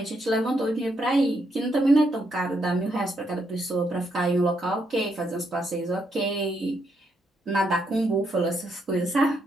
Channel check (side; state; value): both; normal; correlation 0.77